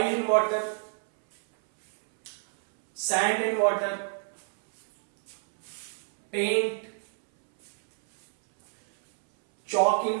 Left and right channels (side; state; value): left; silent; 59 dB below the other